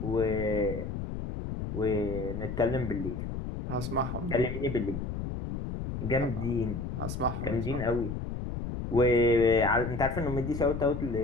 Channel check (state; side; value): noise; left; rumble, 5 dB below the sound